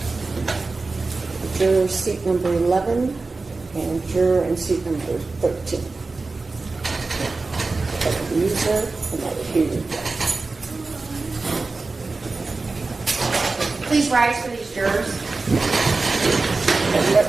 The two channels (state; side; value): quieter; left; 3.7 dB